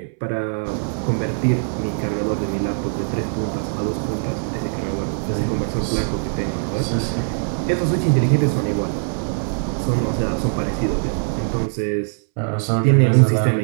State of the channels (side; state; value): left; silent; 64 dB below the other